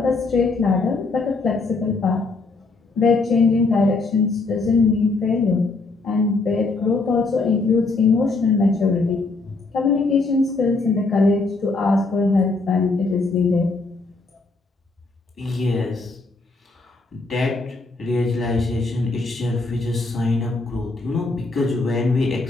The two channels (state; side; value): quieter; right; 3.6 dB